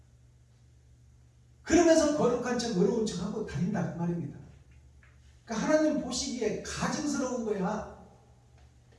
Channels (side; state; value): both; identical; correlation 1.00